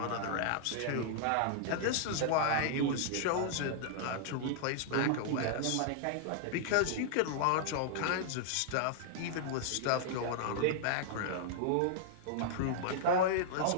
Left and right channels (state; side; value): different; both; correlation -0.01